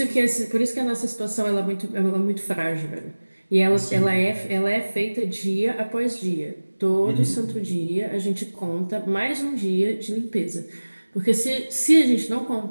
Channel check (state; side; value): inverted; both; correlation -1.00